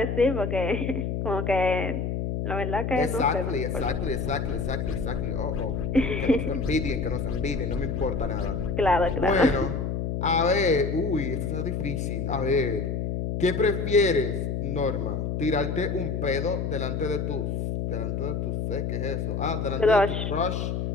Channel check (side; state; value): left; noise; hum, 1 dB below the sound